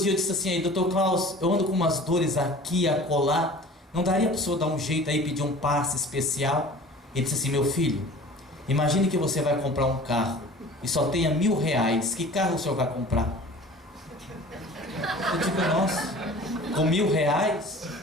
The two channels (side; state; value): both; normal; correlation 0.43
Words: eu disse assim, aí, doutor Klaus, eu ando com umas dores aqui, acolá, não daria para o senhor dar um jeito aí, pedir um passe especial? Ele disse assim, meu filho, imagine que você vai comprar um carro e só tenha R$1.000, que carro o senhor vai comprar? Eu digo, nossa, com R$1.000?